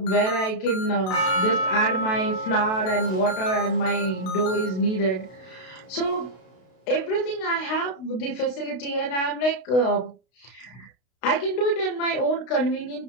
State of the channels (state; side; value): late; right; 32 ms